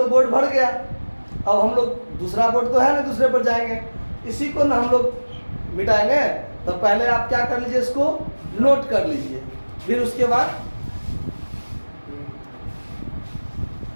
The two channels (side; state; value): both; inverted; correlation -1.00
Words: बोर्ड भर गया, अब हम लोग दूसरा बोर्ड तो है ना, दूसरे पर जाएंगे, इसी को ना हम लोग मिटाएंगे। तो पहले आप क्या कर लीजिए, इसको नोट कर लीजिए, फिर उसके बाद